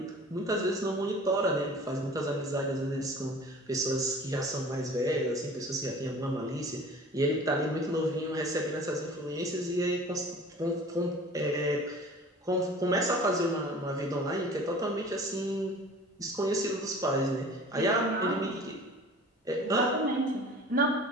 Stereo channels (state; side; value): normal; both; correlation 0.44